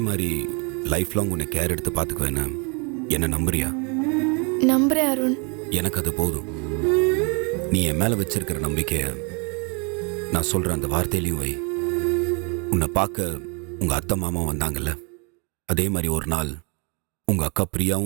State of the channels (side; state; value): left; quieter; 34.1 dB